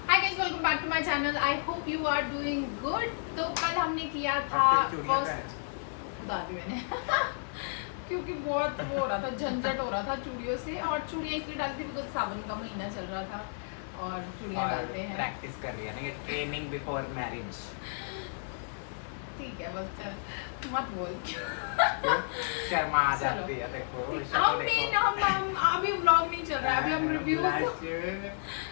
Hi guys, welcome back to my channel. I hope you are doing good. तो कल हमने किया था फर्स्ट, बता दी मैंने क्योंकि बहुत वो हो रहा था, झंझट हो रहा था चूड़ियों से, और चूड़ियाँ इसलिए डाली थी बिकॉज सावन का महीना चल रहा था और चूड़ियाँ डालते हैं। प्रैक्टिस कर रही है ना, ये ट्रेनिंग बिफोर मैरिज। ठीक है, बस मत बोल शर्मा आ जाती है। देखो हम अभी व्लॉग नहीं चल रहा है, अभी हम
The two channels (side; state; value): right; silent; digital silence